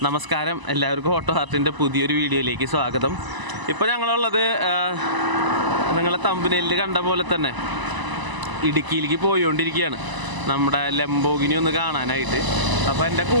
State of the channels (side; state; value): left; late; 1.0 ms